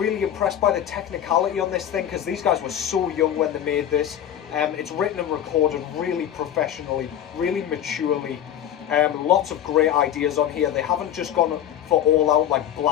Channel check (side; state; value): right; quieter; 10.5 dB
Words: impressed by the technicality on this thing, because these guys were so young when they made this. It's written and recorded really professionally, really maturely. Lots of great ideas on here. They haven't just gone for all out like